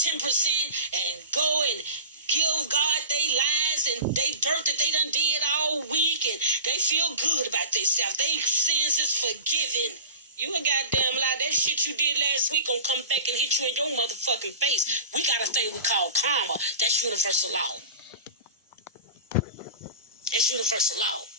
10% and go and give God they lies and they dirt that they done did all week, and they feel good about themselves. They sins is forgiven. You a goddamn lie. That shit you did last week gonna come back and hit you in your motherfucking face. We got a thing we call karma. That's universal law. It's universal law.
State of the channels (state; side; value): inverted; both; correlation -0.33